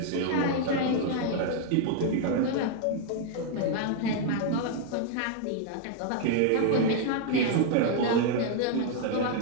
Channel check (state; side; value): different; both; correlation 0.00